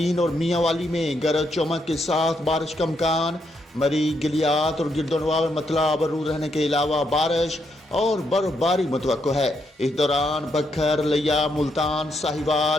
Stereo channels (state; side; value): normal; both; correlation 0.78